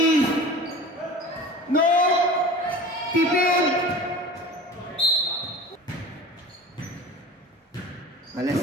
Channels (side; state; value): both; normal; correlation 0.37